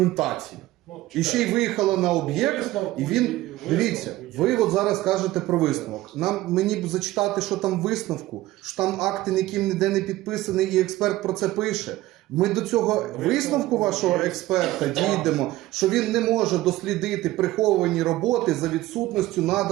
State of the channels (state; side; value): quieter; left; 16.8 dB